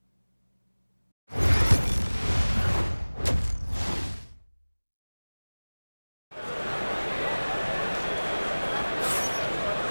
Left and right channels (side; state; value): both; inverted; correlation -1.00